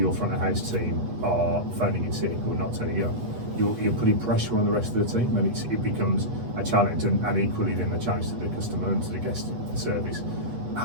front of house team are phoning in sick or not turning up. You're putting pressure on the rest of the team, and it becomes a challenge, and equally then a challenge to the customer and to the guest service.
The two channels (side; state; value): left; late; 8.1 ms